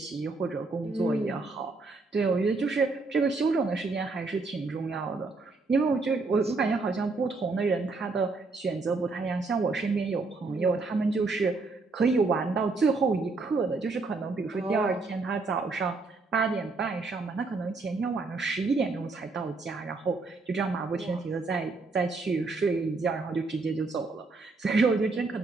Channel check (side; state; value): left; quieter; 3.8 dB